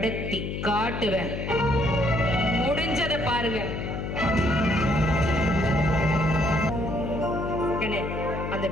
காட்டுவேன். முடிஞ்சதை பாருங்க. அந்த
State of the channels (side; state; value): left; noise; hum, 4 dB below the sound